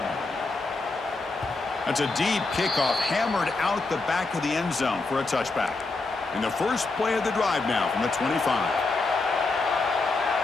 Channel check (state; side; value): quieter; right; 3.6 dB